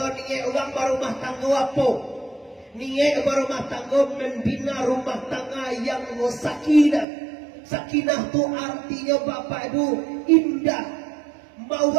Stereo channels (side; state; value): left; drops out; at 7.1 s